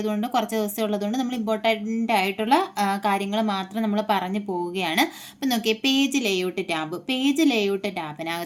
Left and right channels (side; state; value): both; identical; correlation 1.00